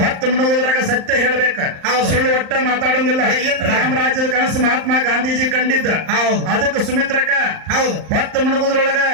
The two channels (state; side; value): late; left; 38 ms